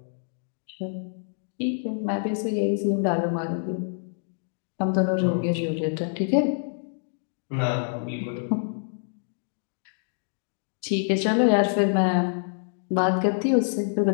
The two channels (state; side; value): silent; right; digital silence